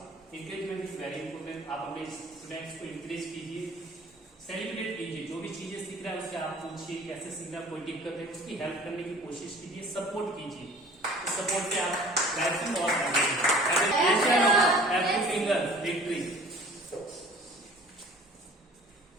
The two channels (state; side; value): normal; both; correlation 0.47